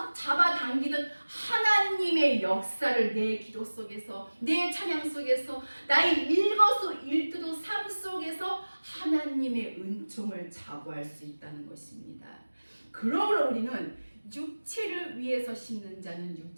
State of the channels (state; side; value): inverted; both; correlation -1.00